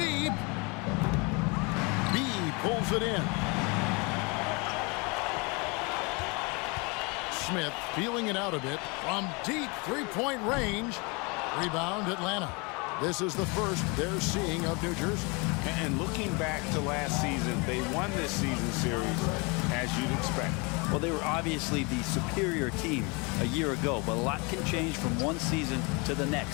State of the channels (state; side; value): quieter; right; 29.5 dB